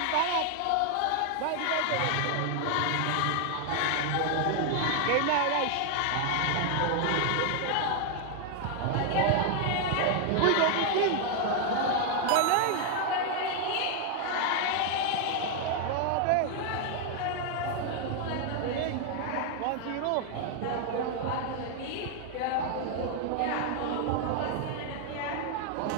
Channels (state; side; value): different; both; correlation 0.00